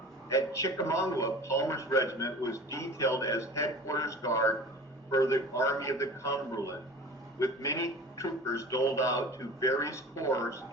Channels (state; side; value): normal; both; correlation 0.39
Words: At Chickamauga, Palmer's regiment was detailed as headquarters guard for the Army of the Cumberland, with many troopers doled out to various corps